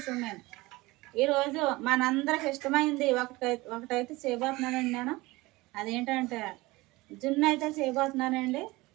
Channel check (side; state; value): left; quieter; 21.1 dB